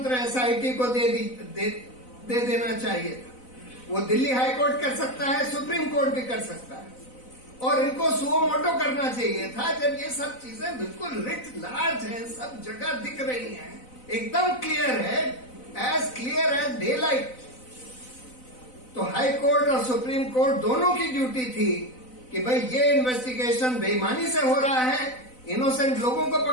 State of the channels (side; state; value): right; late; 4.0 ms